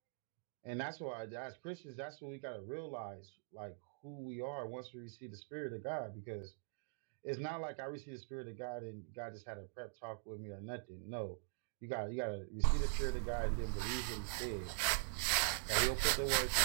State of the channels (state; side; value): silent; left; digital silence